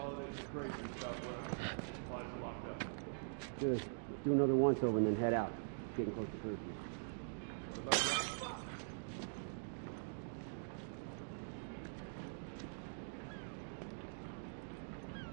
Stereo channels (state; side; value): silent; left; digital silence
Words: Good. Let's do another once over and then head out. It's getting close to curfew.